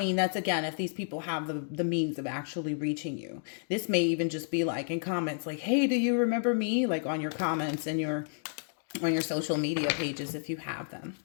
again, if these people have the means of actually reaching you. This may even just be like in comments like, hey, do you remember me? Like on your comments and on your social media pages if you have them.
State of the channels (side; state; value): right; silent; digital silence